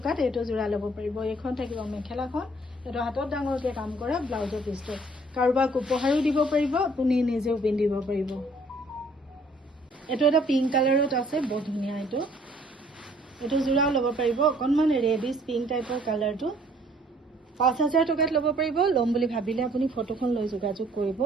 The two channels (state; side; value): normal; both; correlation 0.59